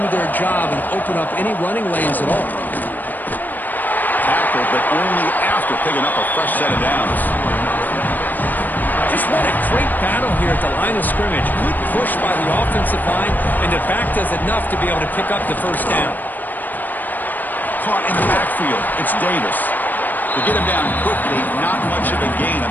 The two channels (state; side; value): late; right; 0.087 ms